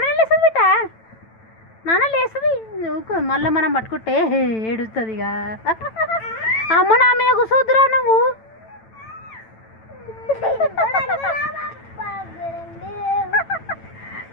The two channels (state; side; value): late; right; 9.0 ms